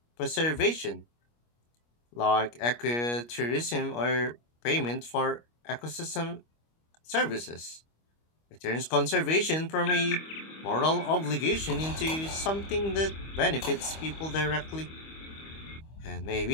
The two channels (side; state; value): right; late; 25 ms